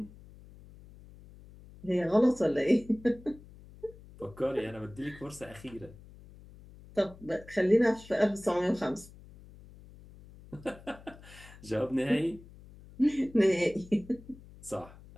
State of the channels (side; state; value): left; noise; hum, 20 dB below the sound